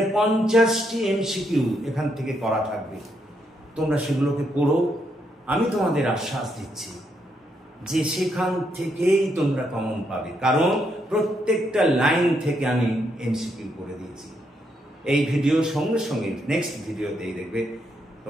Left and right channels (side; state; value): both; normal; correlation 0.78